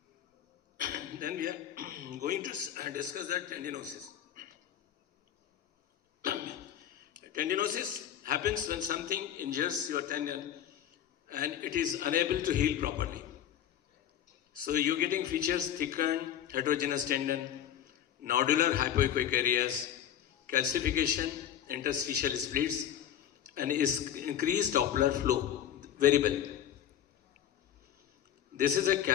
Then we are going to discuss that tendinosis. Tendinosis happens when something injures your tendon and it is unable to heal properly. So you're getting features thickened, heterogeneous tendon, nodular hypoechoic areas, calcification, interstitial splits, and is increased Doppler flow, variable. This is a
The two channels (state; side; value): quieter; right; 10.5 dB